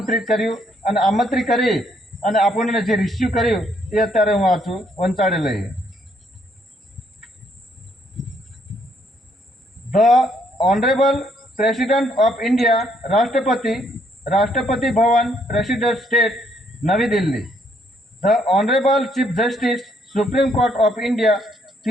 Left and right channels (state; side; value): normal; both; correlation 0.70